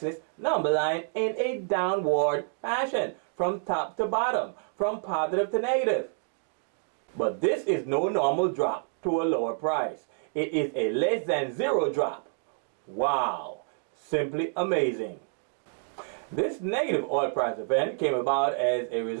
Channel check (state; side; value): silent; left; 59 dB below the other